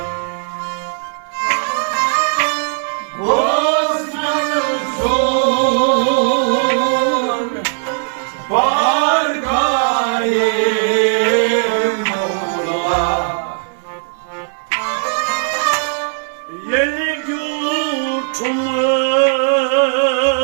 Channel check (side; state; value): left; silent; 68 dB below the other